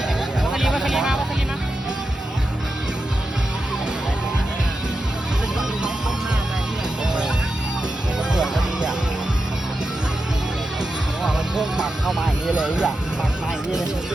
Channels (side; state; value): both; normal; correlation 0.89